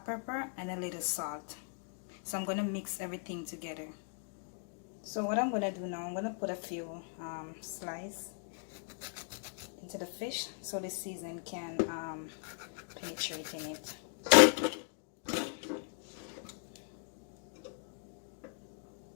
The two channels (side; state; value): right; silent; 52 dB below the other